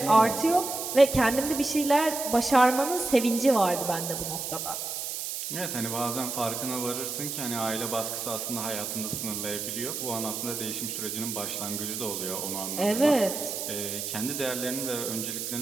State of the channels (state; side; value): noise; right; hiss, 4 dB below the sound